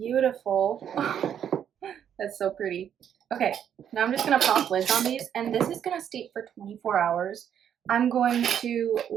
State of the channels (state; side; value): quieter; left; 9.1 dB